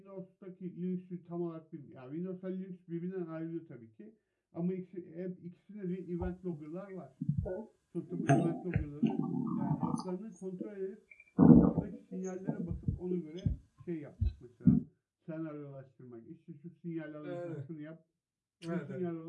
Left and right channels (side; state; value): both; identical; correlation 1.00